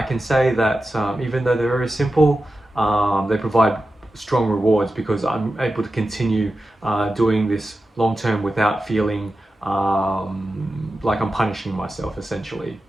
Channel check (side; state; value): both; normal; correlation 0.92